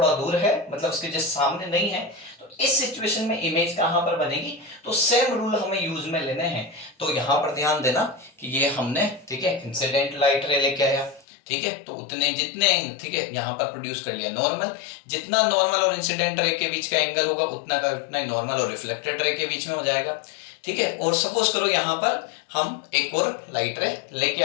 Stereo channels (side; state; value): right; drops out; at 11.2 s